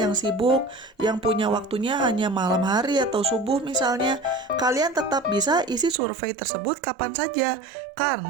sibuk, yang punya waktunya hanya malam hari atau subuh misalnya, kalian tetap bisa isi survei tersebut kapan saja,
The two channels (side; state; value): left; drops out; at 6.0 s